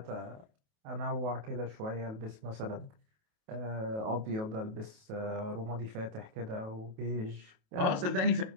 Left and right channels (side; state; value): left; late; 28 ms